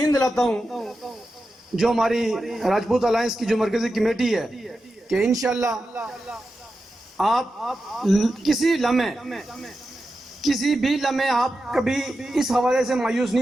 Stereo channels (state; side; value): normal; both; correlation 0.91